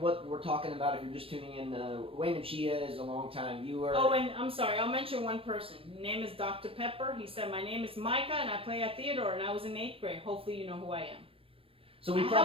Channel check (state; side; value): late; left; 0.27 ms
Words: what we're talking about, if you're just tuning in, Wayne and Chia is a long-time viewer. Oh, and I'm sorry, I'll mention one person. His name is Dr. Pepper. He said, my name is Micah, and I play at Theodore, and I was in 8th grade. Hopefully you know who I am. So I